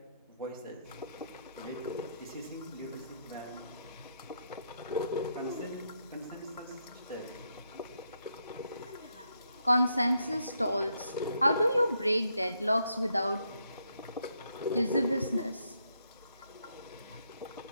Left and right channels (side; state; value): both; inverted; correlation -0.78